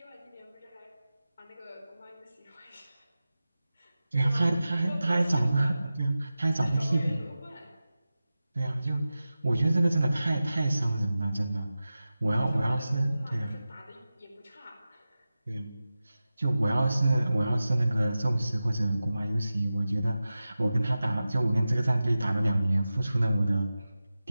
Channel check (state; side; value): inverted; both; correlation -0.94